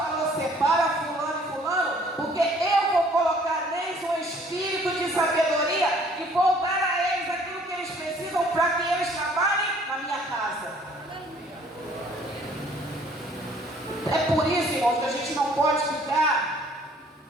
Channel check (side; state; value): both; normal; correlation 0.58